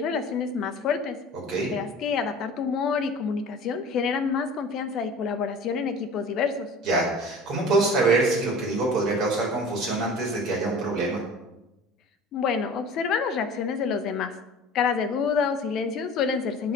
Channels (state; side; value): normal; both; correlation 0.41